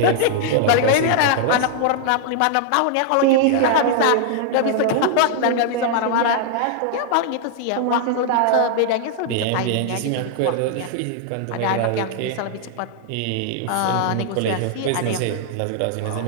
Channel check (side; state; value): both; different; correlation -0.01